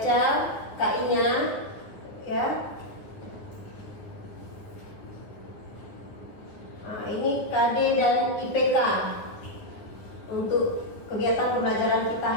KI-nya. Ya. Nah, ini KD dan IPK untuk kegiatan pembelajaran kita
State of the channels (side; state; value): right; late; 9.5 ms